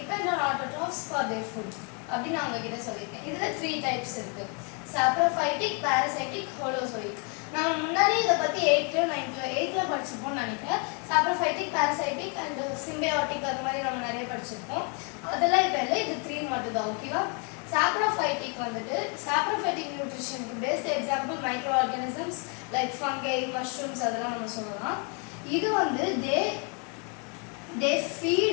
on autotrophs for their food அப்படின்னு நான் உங்ககிட்ட சொல்லியிருக்கேன். இதுல 3 டைப்ஸ் இருக்கு. Saprophytic, parasitic, holozoic. நம்ம முன்னாடி இதை பற்றி 8th படிச்சிருப்போம்னு நினைக்கிறேன். சாப்ரோஃபைட்டிக், பாராசைட்டிக் அண்ட் சிம்பியாட்டிக் அது மாதிரி நம்ம நிறைய படிச்சிருப்போம். அதெல்லாம் இப்போ இல்லை, இது 3 மட்டும் தான். ஓகேவா? சாப்ரோஃபைட்டிக் வந்துட்டு சாப்ரோஃபைட்டிக் நியூட்ரிஷனுக்கு best example micro organisms like fungi, mushrooms அதெல்லாம் நம்ம சொல்லலாம். இது வந்து they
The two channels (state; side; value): quieter; right; 36.8 dB